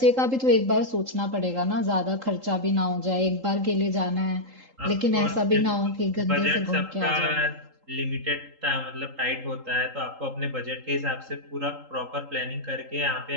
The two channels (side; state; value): left; late; 3.8 ms